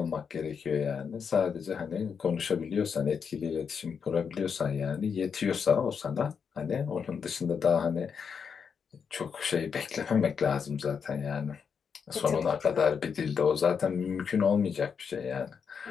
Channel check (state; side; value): quieter; right; 6.5 dB